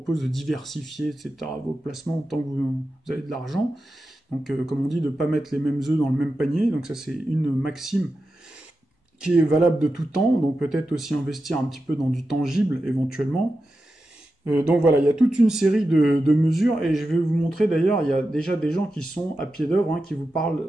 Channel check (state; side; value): normal; both; correlation 0.91